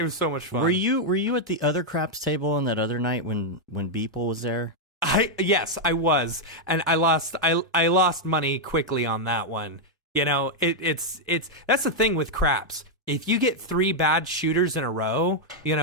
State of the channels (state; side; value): normal; both; correlation -0.02